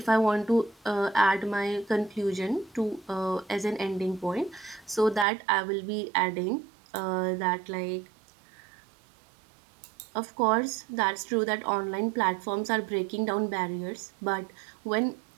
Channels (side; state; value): left; drops out; at 5.2 s